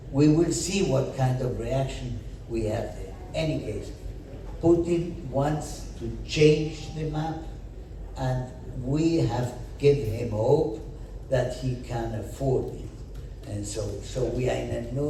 We will see what kind of reaction we have there. Any case, Putin wants to change the map, and we have given him hope that he can afford it. And so we are in an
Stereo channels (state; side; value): identical; both; correlation 1.00